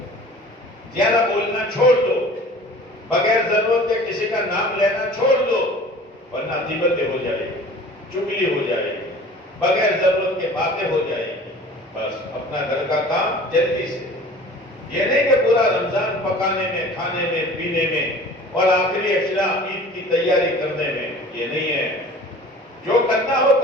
زیادہ بولنا چھوڑ دو، بغیر ضرورت کے کسی کا نام لینا چھوڑ دو، ورنہ غیبتیں ہو جائے گی، چگلی ہو جائے گی، بغیر ضرورت کے باتیں ہو جائے گی۔ بس اپنا گھر کا کام جلدی سے، یہ نہیں کہ پورا رمضان پکانے میں، کھانے میں، پینے میں اور آخری اشیاء عید کی تیاری کرنے میں، یہ نہیں ہے۔ جو کرنا ہو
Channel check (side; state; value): both; normal; correlation 0.44